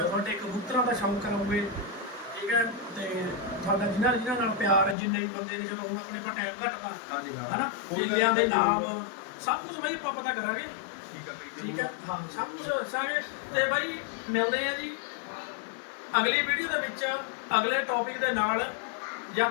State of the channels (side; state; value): right; drops out; at 5.0 s